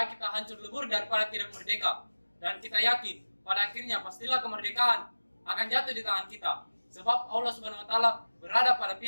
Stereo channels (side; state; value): both; inverted; correlation -1.00